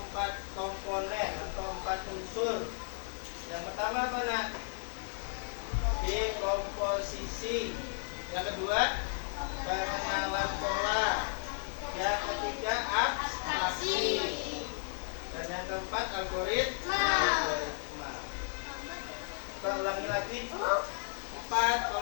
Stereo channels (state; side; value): silent; right; digital silence